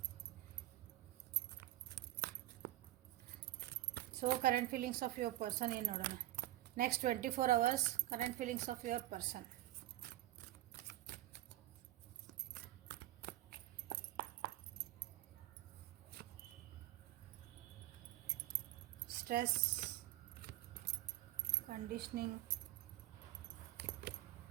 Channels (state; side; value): quieter; left; 15.9 dB